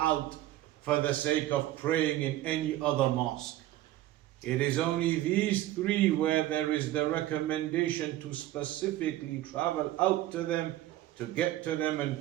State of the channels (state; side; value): quieter; left; 14.7 dB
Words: for the sake of praying in any other mosque. It is only these three where there is the recommendation to specifically travel out to them, to get to them